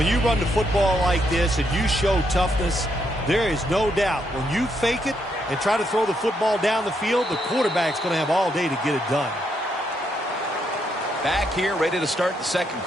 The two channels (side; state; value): both; normal; correlation 0.77